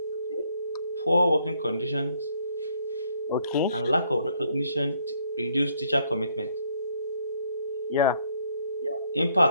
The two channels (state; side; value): inverted; both; correlation -0.68